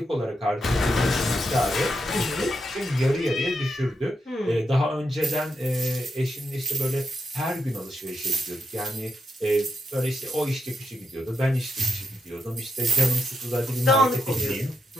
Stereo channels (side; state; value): both; normal; correlation 0.84